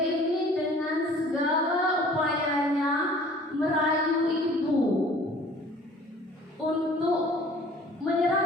dengan segala upayanya merayu ibu untuk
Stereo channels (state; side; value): normal; both; correlation 0.50